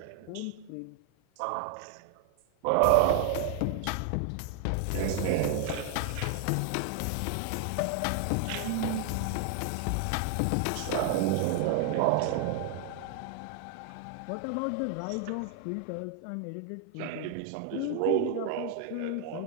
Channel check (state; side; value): different; both; correlation 0.00